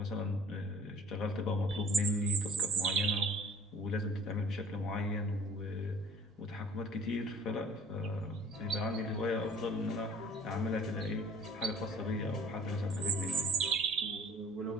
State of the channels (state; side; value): normal; both; correlation 0.49